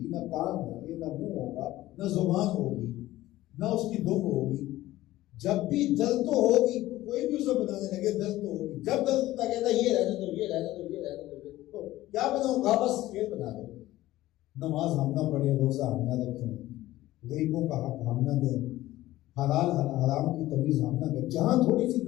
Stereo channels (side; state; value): right; quieter; 16.0 dB